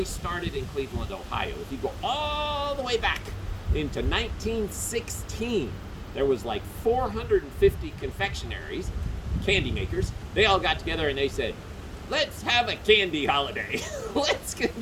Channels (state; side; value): identical; both; correlation 1.00